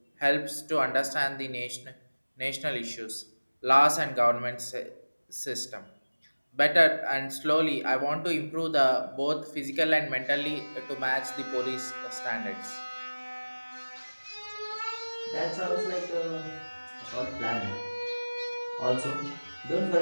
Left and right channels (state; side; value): inverted; both; correlation -1.00